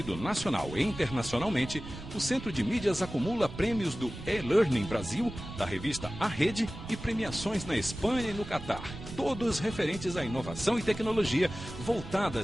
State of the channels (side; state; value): right; noise; rumble, 12 dB below the sound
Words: nacional e internacionalmente, o Centro de Mídias acumula prêmios do E-Learning Brasil, da revista A Rede, e premiações na Espanha e no Catar, todos referentes à inovação e tecnologia